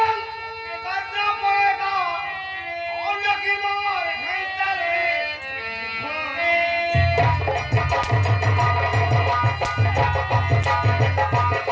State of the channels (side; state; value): both; identical; correlation 1.00